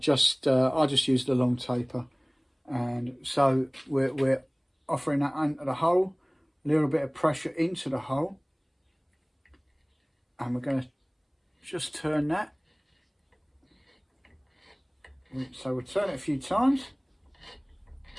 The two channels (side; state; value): both; identical; correlation 1.00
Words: use the long taper. And so we're offering that into the hole, a little bit of pressure into the hole, and we're going to just turn that. So we'll turn it a few times.